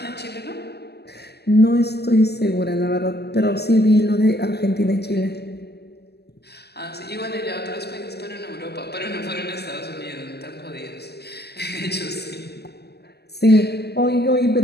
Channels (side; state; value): right; late; 0.47 ms